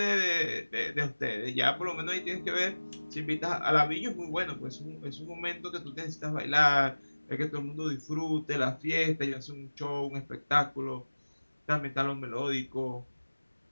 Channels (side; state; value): both; inverted; correlation -1.00